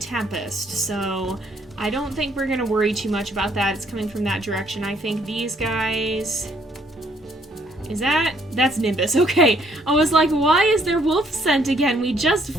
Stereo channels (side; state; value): both; normal; correlation 0.67